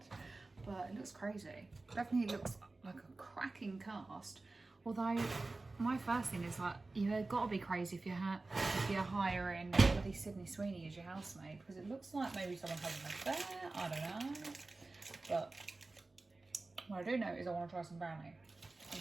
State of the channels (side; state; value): left; quieter; 3.3 dB